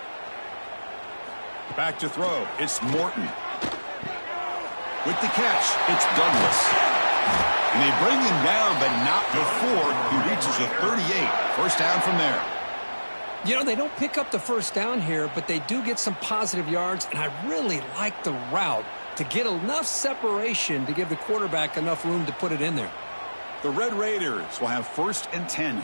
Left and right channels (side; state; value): both; inverted; correlation -1.00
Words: Back to throw. It's Morton. With the catch, it's Douglas. And they bring him down, but not before he reaches the 38. 1st down from there. You know, they don't pick up the 1st down here, but they do get some positive yards, and I really like the route to get enough separation to give the quarterback enough room to put it in there. The Red Raiders will have 1st and 10